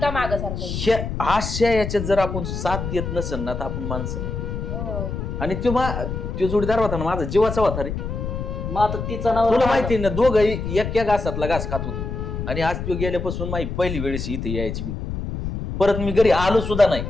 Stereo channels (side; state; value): left; noise; rumble, 5 dB below the sound